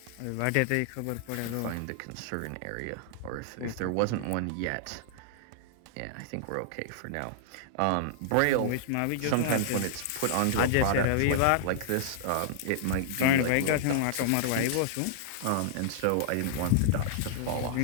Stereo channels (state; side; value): different; both; correlation -0.01